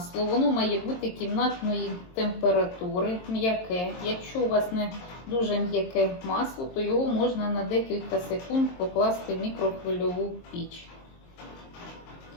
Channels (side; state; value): right; late; 22 ms